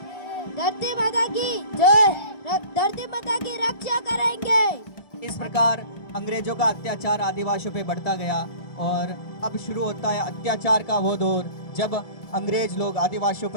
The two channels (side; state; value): right; late; 1.7 ms